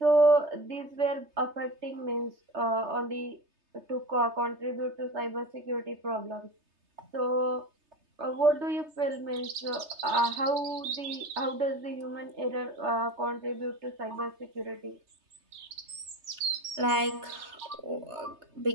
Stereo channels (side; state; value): left; late; 3.3 ms